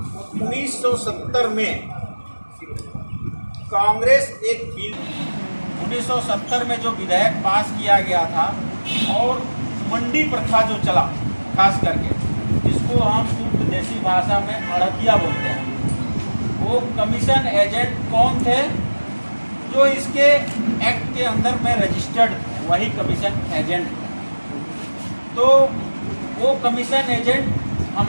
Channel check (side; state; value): both; inverted; correlation -1.00